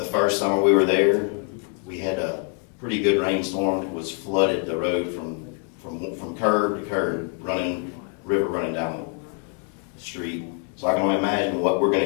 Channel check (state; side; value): quieter; right; 39.0 dB